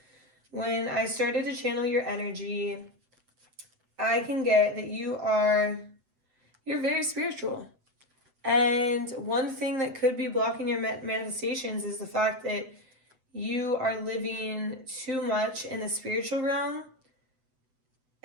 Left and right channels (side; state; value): left; late; 7.9 ms